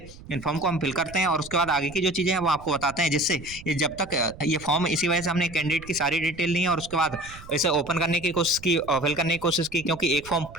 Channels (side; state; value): right; noise; rumble, 18 dB below the sound